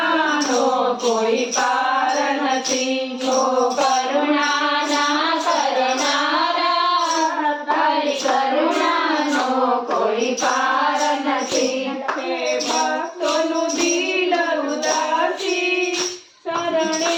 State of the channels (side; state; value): both; identical; correlation 1.00